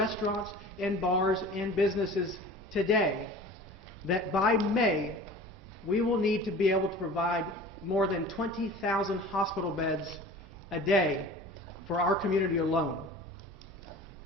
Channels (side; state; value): both; normal; correlation 0.41